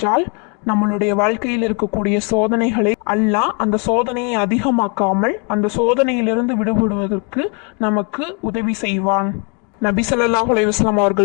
நம்மளுடைய வாழ்க்கையில் இருக்கக்கூடிய சோதனைகளை அல்லாஹ் அந்த சோதனையை அதிகமாக்காமல் அந்த சோதனையிலிருந்து விடுபடுவதற்கு நமக்கு உதவி செய்வான். நபி ஸல்லல்லாஹு அலைஹி வஸல்லம்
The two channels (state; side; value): quieter; right; 35.5 dB